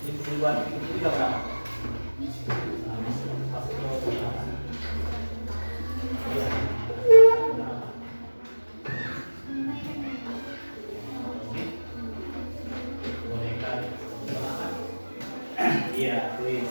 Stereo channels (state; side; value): inverted; both; correlation -1.00